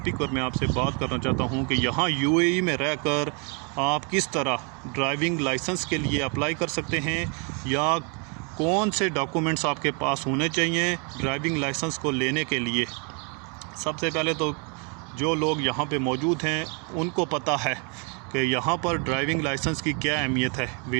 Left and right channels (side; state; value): left; quieter; 35.6 dB